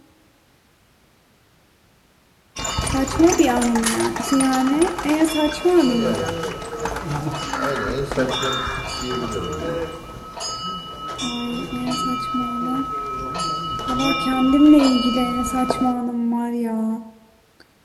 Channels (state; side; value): identical; both; correlation 1.00